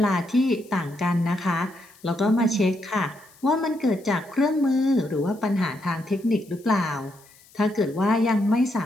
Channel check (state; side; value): noise; left; hiss, 27 dB below the sound